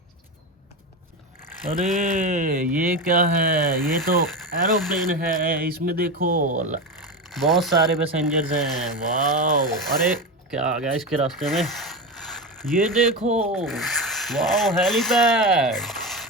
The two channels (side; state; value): both; normal; correlation 0.19